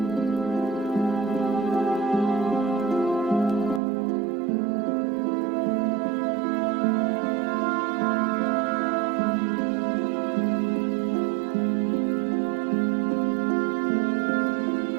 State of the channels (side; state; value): left; drops out; at 3.8 s